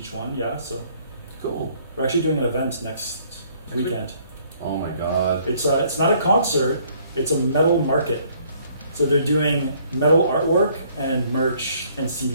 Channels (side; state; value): both; inverted; correlation -0.62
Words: one. Yeah, so Cool. we're actually doing an event next weekend. Oh my god. It's not a concert. It's a metal market. So they're doing metal artwork and merch and